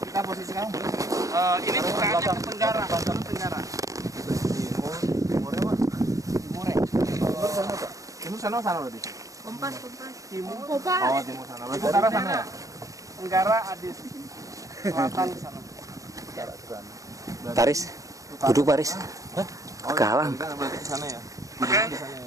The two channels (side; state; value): left; late; 0.16 ms